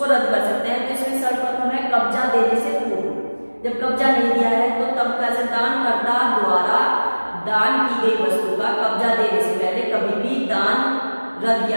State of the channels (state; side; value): inverted; both; correlation -1.00